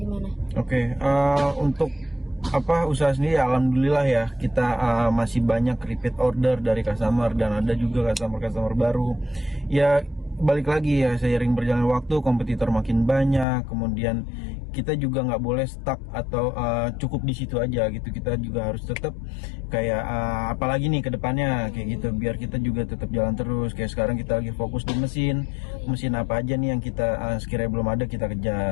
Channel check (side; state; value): right; drops out; at 13.5 s